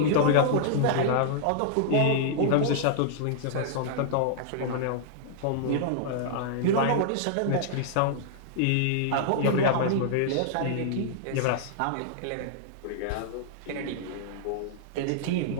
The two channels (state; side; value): different; both; correlation -0.01